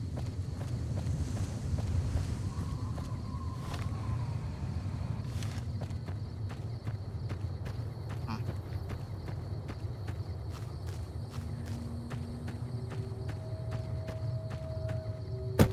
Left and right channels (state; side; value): identical; both; correlation 1.00